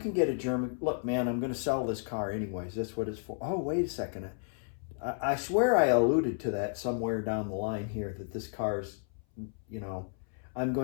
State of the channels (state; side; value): silent; right; 56 dB below the other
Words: get a German... Look, man, I'm going to sell this car anyways. That's what it's for. Oh, wait a second. I swear I alluded to that somewhere down the line here, that this car's, you know, I'm